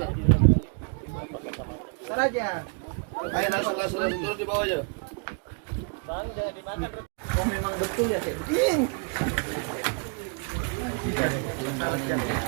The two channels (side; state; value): left; quieter; 38.0 dB